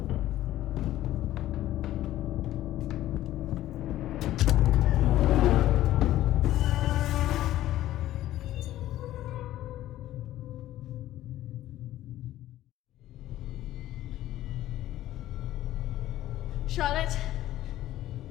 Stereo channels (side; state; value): right; quieter; 14.1 dB